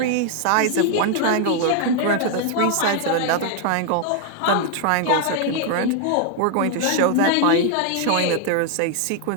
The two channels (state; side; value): different; both; correlation 0.00